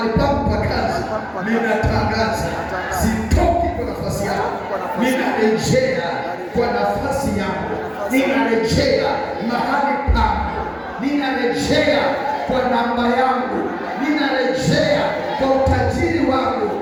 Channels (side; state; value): both; identical; correlation 1.00